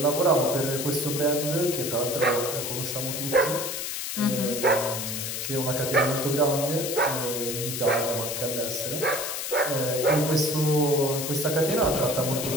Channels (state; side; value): noise; left; hiss, 4 dB below the sound